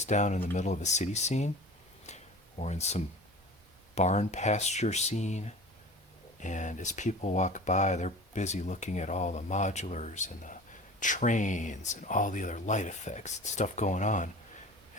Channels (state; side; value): normal; both; correlation 0.39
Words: down in the middle of a city scene or in some barn pasture scene, and as people walk by they're busy looking at all the modulars and the trains and all the other light effects and stuff going on,